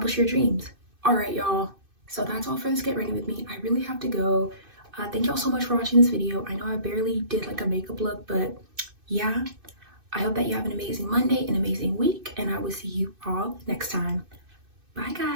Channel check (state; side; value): late; left; 2.6 ms